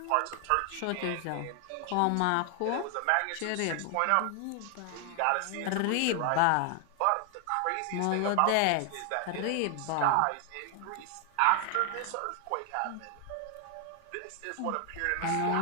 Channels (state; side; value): different; both; correlation 0.00